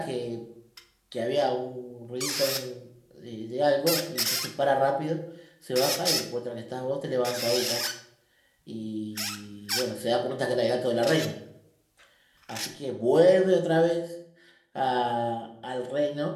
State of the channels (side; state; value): both; identical; correlation 1.00